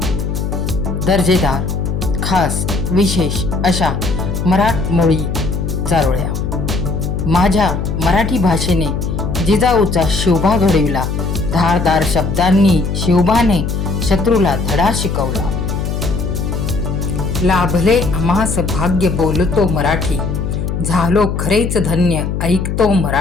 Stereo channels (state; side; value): noise; left; hum, 2 dB below the sound